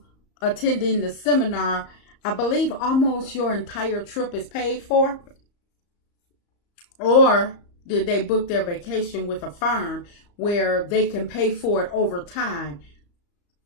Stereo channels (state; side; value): late; right; 34 ms